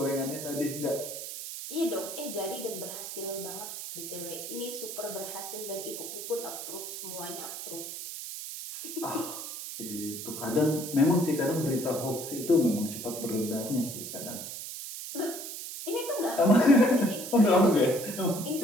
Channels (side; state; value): right; noise; hiss, 8 dB below the sound